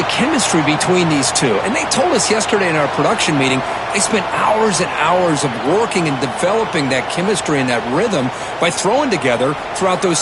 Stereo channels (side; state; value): both; identical; correlation 1.00